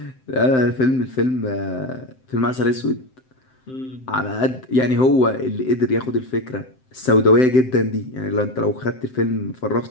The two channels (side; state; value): right; late; 7.8 ms